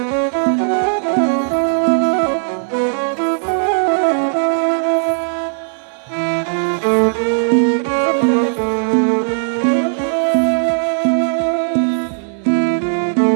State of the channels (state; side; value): silent; left; digital silence